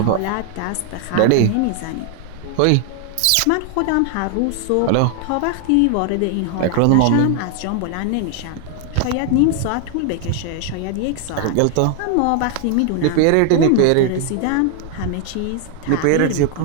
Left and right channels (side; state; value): both; different; correlation 0.00